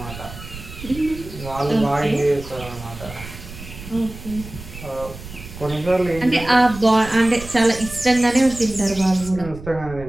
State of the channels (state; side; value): noise; right; rumble, 13 dB below the sound